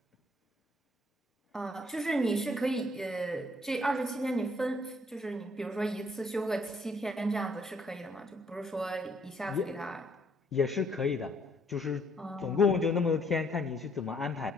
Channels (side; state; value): both; normal; correlation 0.66